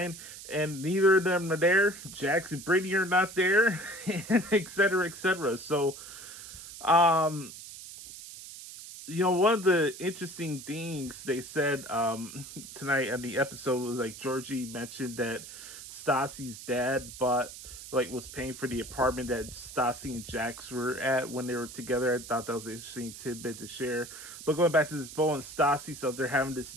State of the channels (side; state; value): right; noise; hiss, 13 dB below the sound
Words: and neither of them are there. Jax and Brittany are not there, and et cetera, et cetera. So, um, one of the interesting things they said tonight on the episode was like Georgie mentioned that Stassi's dad was paying for the apartment that Stassi and Jax were at when they were together. I thought that was an interesting tidbit to share. But going back to this Beau and Stassi stuff, they're having this